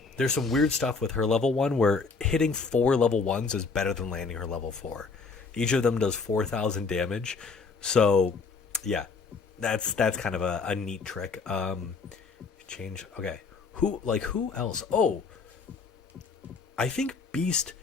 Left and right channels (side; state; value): right; quieter; 4.7 dB